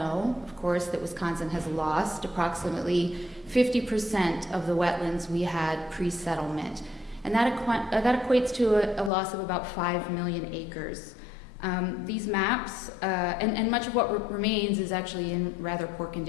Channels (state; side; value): drops out; right; at 9.1 s